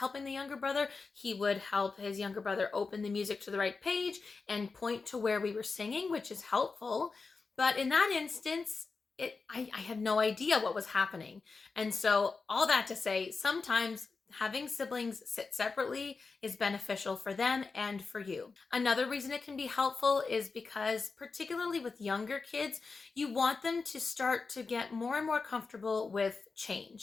the younger brother. He would help his younger brother open the music to the right page and point to where we were singing, which is helpful. But in that instance, I had no idea what was happening. And so all that to say, sometimes having siblings sit separately is beneficial for them and for you. Another reason it can be helpful is because, particularly with younger kids, you want them to start to get more and more comfortable with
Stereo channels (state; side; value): quieter; right; 4.4 dB